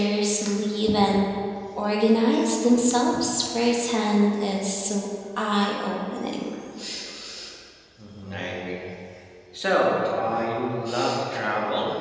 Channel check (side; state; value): both; identical; correlation 1.00